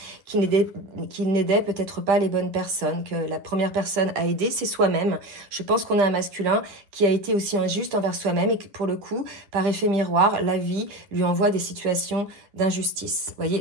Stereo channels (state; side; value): late; left; 10 ms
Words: qu'il n'aidait peut-être pas les bonnes personnes, que la première personne à aider, c'est soi-même. Je pense qu'on a un masculin qui a été aussi injuste envers soi-même et que pour le coup, par effet miroir, la vie lui envoie des situations d'injustice. Vous voyez,